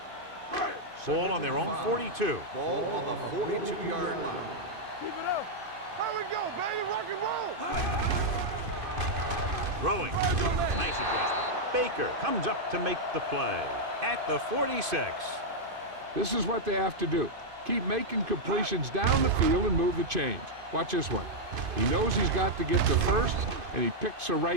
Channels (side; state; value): left; late; 2.5 ms